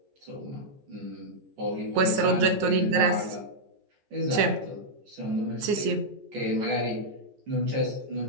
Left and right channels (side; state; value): left; late; 14 ms